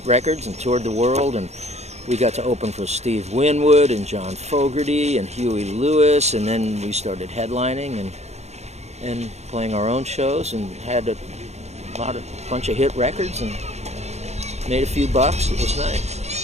records and toured the world, and we got to open for Steve Winwood and John Fogerty and Huey Lewis, and then we started headlining and playing our own shows, and had a bunch of hit records and made a few bucks. It was nice.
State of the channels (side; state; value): left; late; 0.32 ms